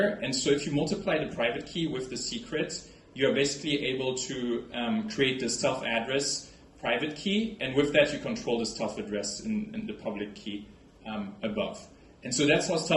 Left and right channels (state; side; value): identical; both; correlation 1.00